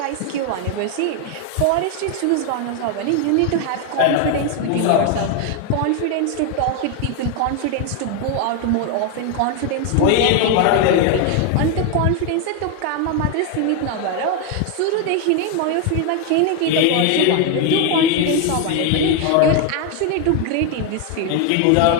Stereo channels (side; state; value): both; different; correlation 0.01